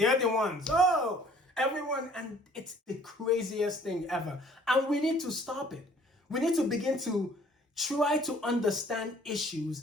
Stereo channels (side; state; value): both; normal; correlation 0.56